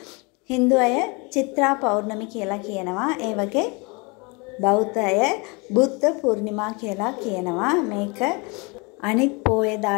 හින්දු අය චිත්‍රා පෞර්ණමි කියලා කියනවා. ඒ වගේ බෞද්ධ අය බුද්ධ පූර්ණිමා කියලා කියනවා. මේක අනිත්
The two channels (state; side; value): quieter; right; 29.2 dB